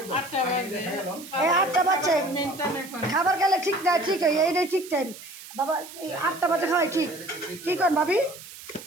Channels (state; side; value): noise; right; hiss, 16 dB below the sound